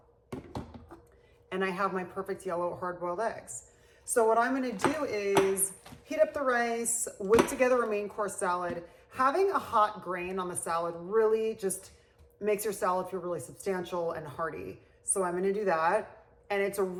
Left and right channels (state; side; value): identical; both; correlation 1.00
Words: And I have my perfect yellow hard-boiled eggs. So what I'm gonna do is heat up the rice, whip together a main course salad. Having a hot grain on the salad really just makes your salad feel really substantial and hearty. So I'm gonna do that. And it's a